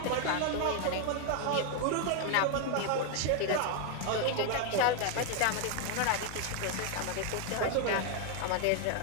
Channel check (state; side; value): different; both; correlation 0.01